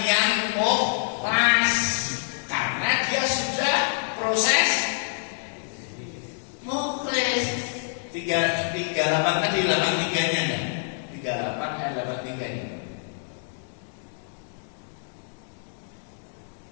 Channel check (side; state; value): right; silent; digital silence